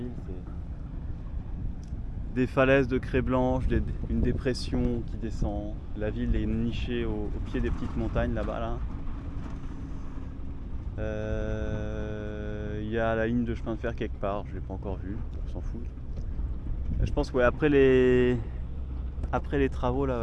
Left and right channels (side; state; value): both; identical; correlation 1.00